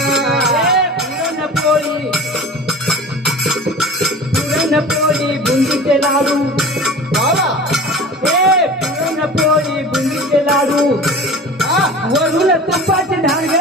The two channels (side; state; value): both; normal; correlation 0.37